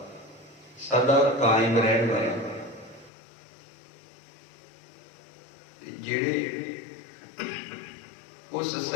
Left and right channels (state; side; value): drops out; right; at 3.1 s